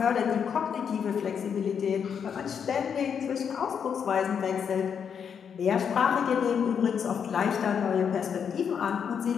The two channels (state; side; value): quieter; right; 7.3 dB